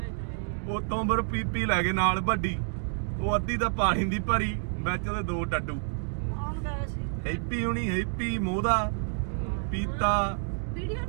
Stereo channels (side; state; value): left; silent; digital silence